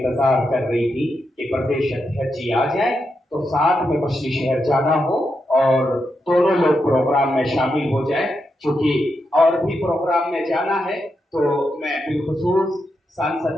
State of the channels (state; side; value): normal; both; correlation 0.85